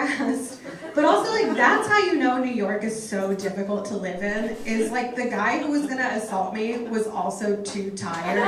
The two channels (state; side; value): identical; both; correlation 1.00